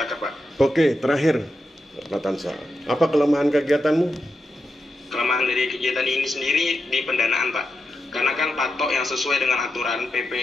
Pak. Oke, terakhir, Pak Tansa, apa kelemahan kegiatanmu? Kelemahan dari kegiatan ini sendiri di pendanaan, Pak. Karena kan patok yang sesuai dengan aturan PP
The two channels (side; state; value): both; normal; correlation 0.87